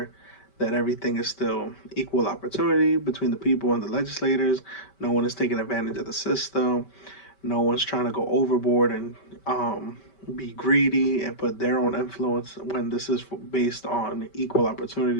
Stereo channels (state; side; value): late; right; 5.2 ms